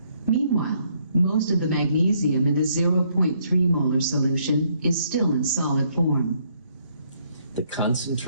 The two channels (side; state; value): both; inverted; correlation -0.70